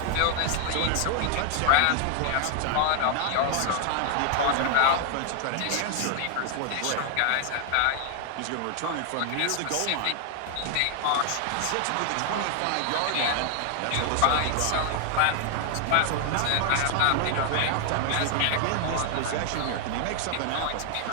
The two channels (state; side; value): different; both; correlation 0.00